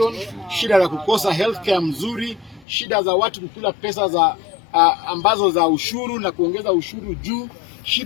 shida za kukosa healthcare mzuri, shida za watu kukula pesa za ambazo za ushuru na kuongeza ushuru juu,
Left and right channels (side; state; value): right; drops out; at 2.7 s